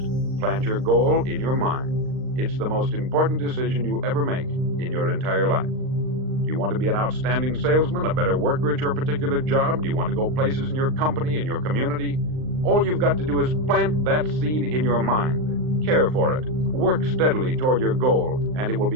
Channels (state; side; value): late; left; 39 ms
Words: Plant your goal in your mind. It's the most important decision you'll ever make in your entire life. Do you want to be an outstanding salesman, a better worker at your particular job? Do you want to go places in your company, in your community? All you've got to do is plant that seed in your mind. Care for it. Work steadily toward your goal, and it will